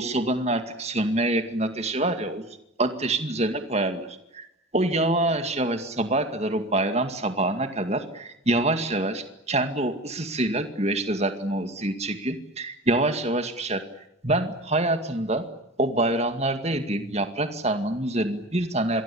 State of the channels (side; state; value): both; normal; correlation 0.33